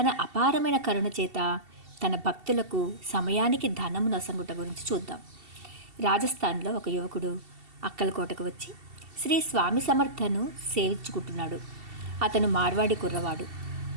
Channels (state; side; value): late; left; 2.7 ms